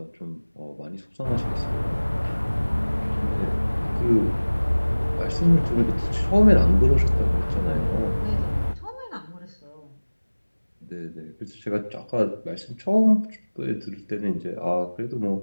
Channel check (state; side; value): inverted; both; correlation -1.00